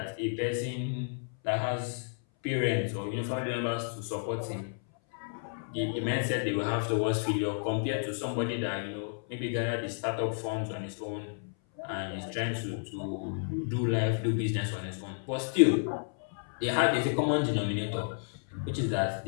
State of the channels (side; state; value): right; silent; 57 dB below the other